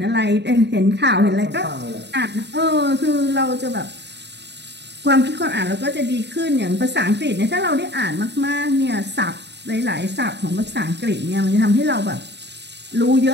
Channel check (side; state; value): left; late; 0.50 ms